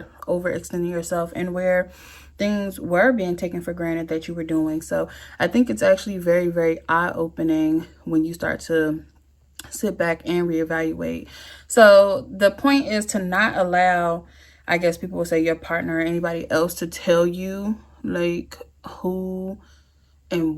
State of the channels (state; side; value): identical; both; correlation 1.00